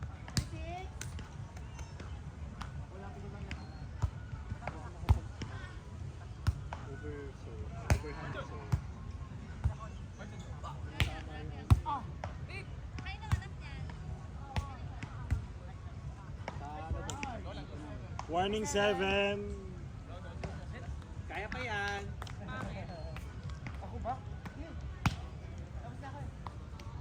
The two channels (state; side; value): identical; both; correlation 1.00